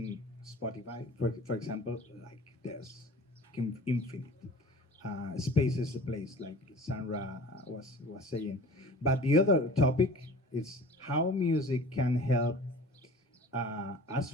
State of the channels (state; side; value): normal; both; correlation 0.43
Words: Spotify, for example, like there's infinite. Space is a place, like Sandra was saying. But the other topic is how music can help